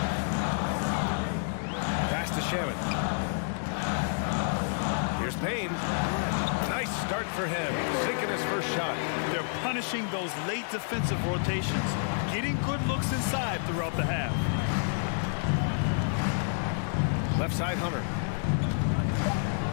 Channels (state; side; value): silent; right; digital silence